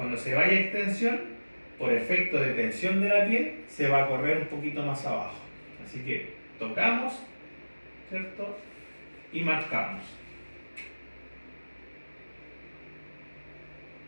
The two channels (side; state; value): both; inverted; correlation -1.00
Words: se vaya a extensión, por efecto de tensión de la piel, se va a correr un poquito más abajo. Así que tocamos, ¿cierto? Y marcamos.